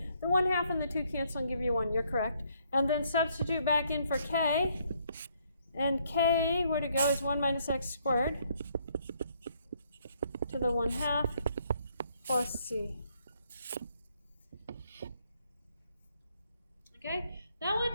The 1/2 and the 2 cancel and give you 1. You're correct. And then substitute back in for k. And k, where to go, is 1 minus x squared to the 1/2 plus c. Okay, that one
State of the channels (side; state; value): both; inverted; correlation -0.69